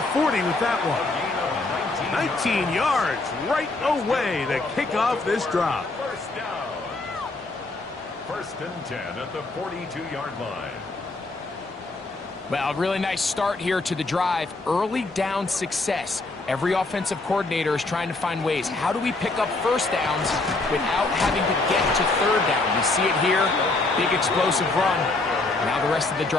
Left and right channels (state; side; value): quieter; right; 3.2 dB